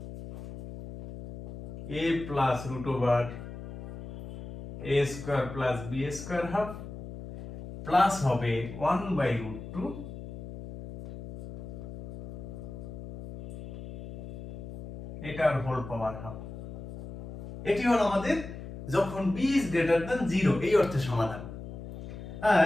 a plus root over a square plus b square half plus হবে 1/√2 এটার হোল পাওয়ার হাফ। এটি হলো আমাদের যখন b ইজ গ্রেটার দ্যান 0 এই অর্থে সমাধান। আর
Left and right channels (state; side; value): noise; left; hum, 11 dB below the sound